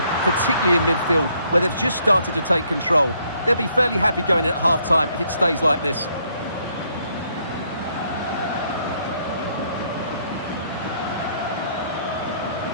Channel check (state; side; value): inverted; both; correlation -0.69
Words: particularly in midfield, where they've just started to take control. They'll be fairly happy going in at half-time if it stays like this.